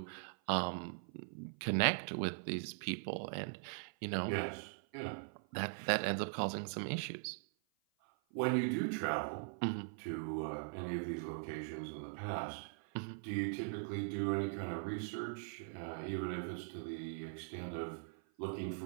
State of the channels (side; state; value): left; silent; 50 dB below the other